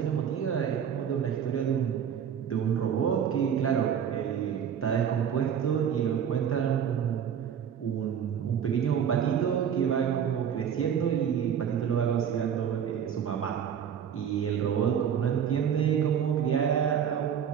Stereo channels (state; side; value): quieter; left; 8.3 dB